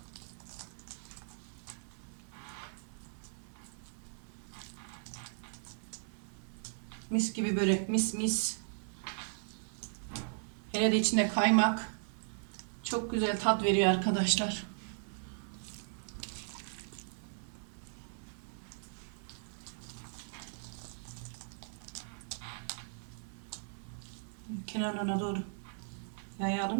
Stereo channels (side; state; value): left; silent; 53 dB below the other